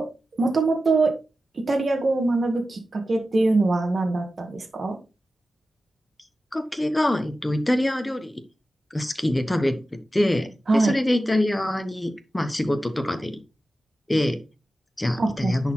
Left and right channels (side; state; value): both; normal; correlation 0.93